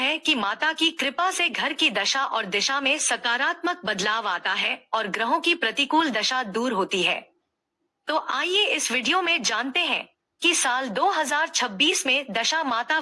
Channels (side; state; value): both; identical; correlation 1.00